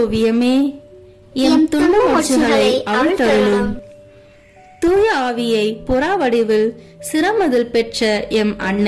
எம் துன்ப முடிச்சுகளை அவிழ்த்தருளும். தூய ஆவியை புறா வடிவில் சிரமதில் பெற்ற எம்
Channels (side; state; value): both; identical; correlation 1.00